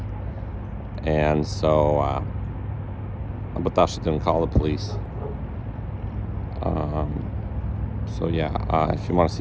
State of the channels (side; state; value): both; identical; correlation 1.00